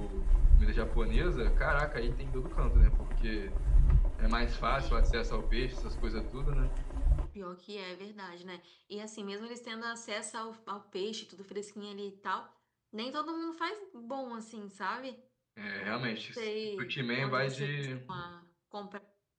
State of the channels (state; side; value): identical; both; correlation 1.00